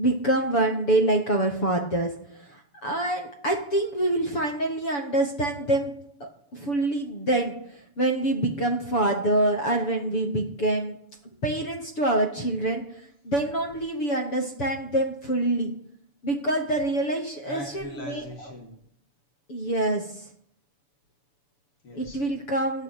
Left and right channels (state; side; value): late; right; 7.0 ms